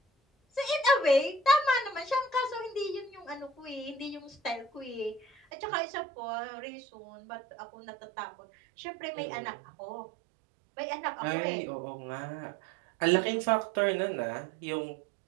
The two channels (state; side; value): drops out; left; at 5.4 s